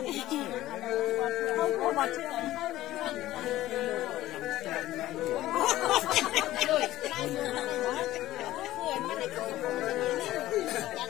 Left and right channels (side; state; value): right; quieter; 15.3 dB